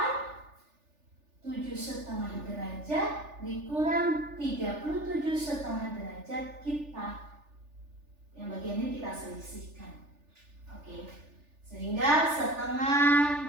7,5 derajat dikurang 37,5 derajat kita, yang bagian ini kita selisihkan. Oke, sehingga setengah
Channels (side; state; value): left; late; 3.4 ms